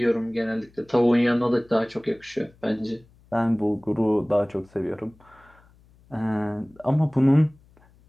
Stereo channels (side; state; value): left; noise; hum, 29 dB below the sound